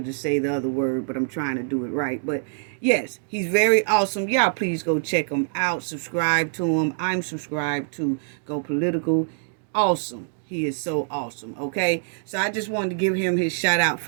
to say the other word, but I'm trying to do it right. But yes, he's very awesome. Y'all please go check him out. Subscribe to him. I'm subscribed to Go Political. Awesome. He is so awesome. Okay. So I just wanted to give him his shout out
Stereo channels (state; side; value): silent; left; digital silence